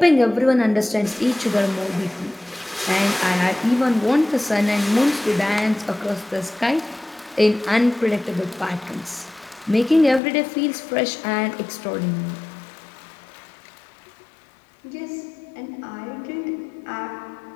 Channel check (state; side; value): drops out; right; at 10.2 s